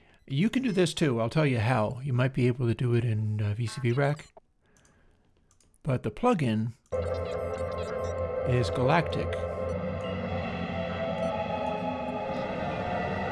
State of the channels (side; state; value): both; identical; correlation 1.00